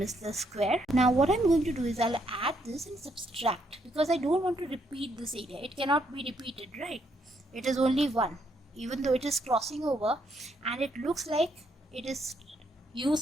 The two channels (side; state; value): both; normal; correlation 0.74